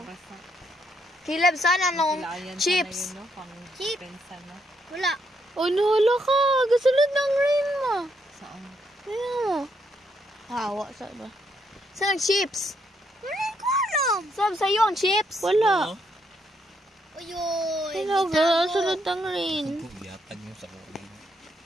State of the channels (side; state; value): both; normal; correlation 0.75